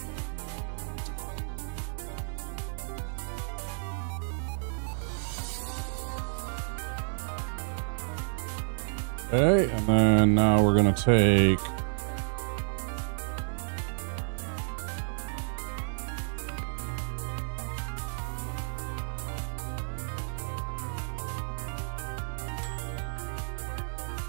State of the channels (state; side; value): silent; left; 57 dB below the other